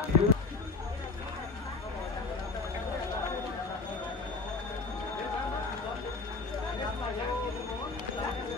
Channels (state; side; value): quieter; right; 3.9 dB